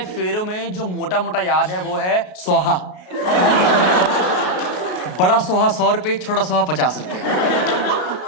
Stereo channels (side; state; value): right; late; 33 ms